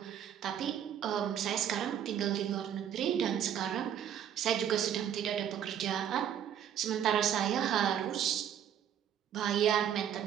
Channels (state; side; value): quieter; left; 9.5 dB